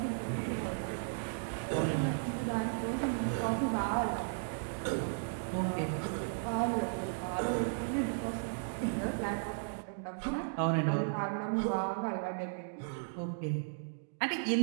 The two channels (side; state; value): left; silent; digital silence